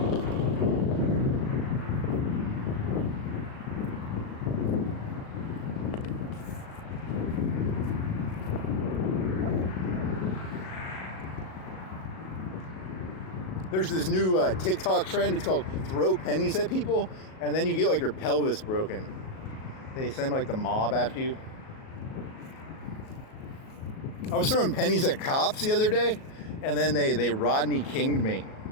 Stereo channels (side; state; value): right; late; 37 ms